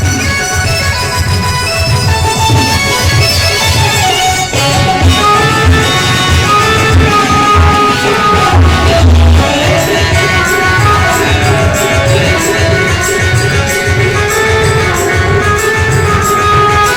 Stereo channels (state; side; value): identical; both; correlation 1.00